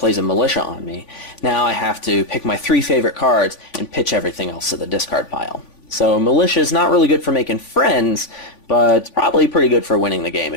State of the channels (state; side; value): late; right; 3.5 ms